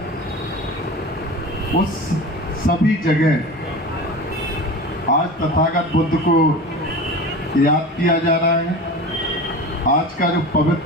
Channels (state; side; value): normal; both; correlation 0.32